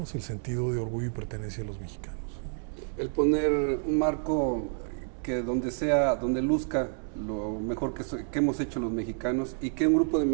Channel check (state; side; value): silent; left; 56 dB below the other